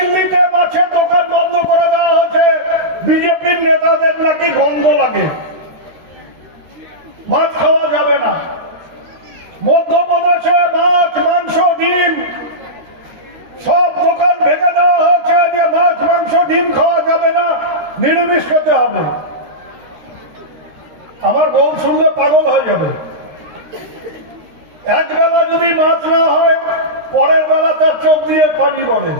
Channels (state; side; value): late; left; 13 ms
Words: মাছের দোকান বন্ধ করে দেওয়া হয়েছে, বিজেপির নেতাদের নাকি গন্ধ লাগে, মাছ খাওয়া যাবে না। মধ্যপ্রদেশে মাছ মাংস ডিম সব দোকান ভেঙে দেওয়া হয়েছে যে মাছ মাংস ডিম খাওয়া যাবে না, নিরামিষ খেতে হবে। আমার বউ শুনলে পাগল হয়ে যাবে। এক বেলা যদি মাছ না হয় পরের বেলা তার চোখ দিয়ে পানি পড়ে,